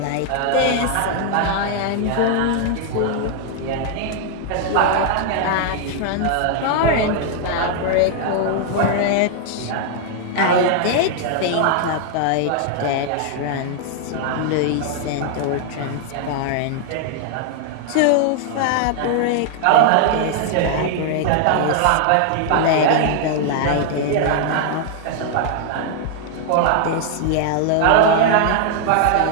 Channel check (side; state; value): both; different; correlation 0.00